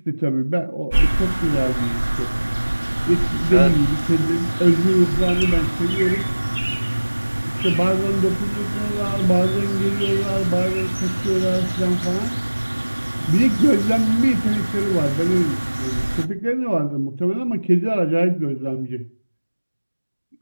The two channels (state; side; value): inverted; both; correlation -1.00